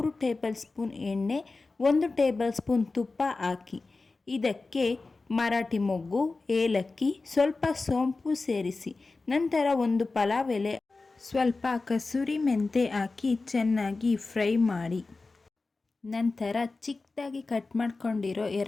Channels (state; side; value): quieter; right; 3.7 dB